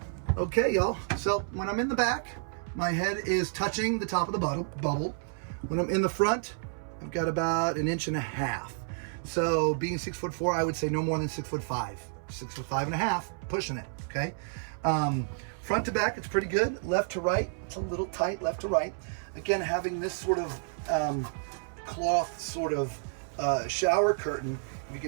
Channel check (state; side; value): silent; left; 58 dB below the other